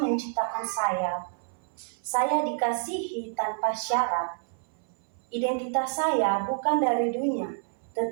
menciptakan saya. Saya dikasihi tanpa syarat. Identitas saya bukan dari dunia,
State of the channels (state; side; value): silent; left; 59 dB below the other